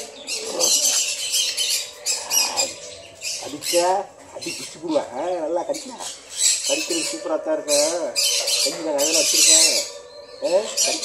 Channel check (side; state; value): both; identical; correlation 1.00